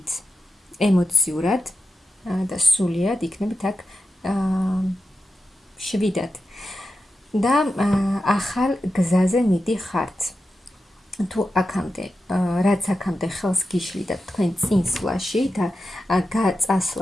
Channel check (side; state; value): both; normal; correlation 0.90